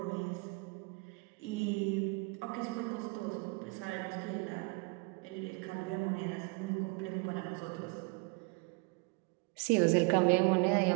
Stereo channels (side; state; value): left; quieter; 31.2 dB